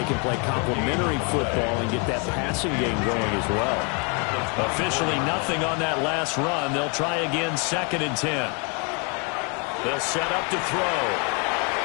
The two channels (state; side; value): quieter; right; 34.8 dB